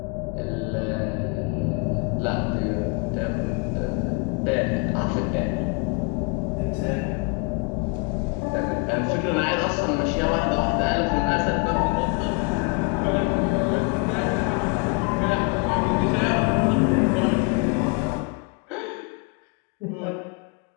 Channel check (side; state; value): right; quieter; 33.4 dB